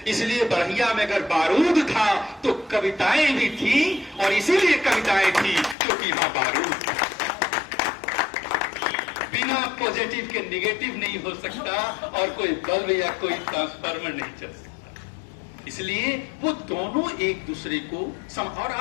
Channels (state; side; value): drops out; right; at 5.8 s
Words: इसलिए बढ़िया में अगर बारूद था तो कविताएं भी थी, और इसीलिए कविताएं थी क्योंकि वहां बारूद था। बिना पॉजिटिव के निगेटिव नहीं हो सकता और कोई बल्ब या कोई ट्रांसफार्मर नहीं चल सकता। इसलिए वो दोनों एक दूसरे को और